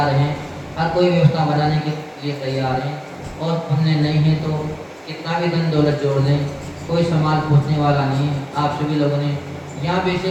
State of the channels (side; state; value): both; identical; correlation 1.00